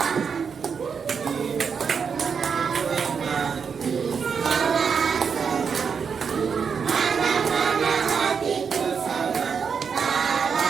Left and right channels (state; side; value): quieter; left; 6.3 dB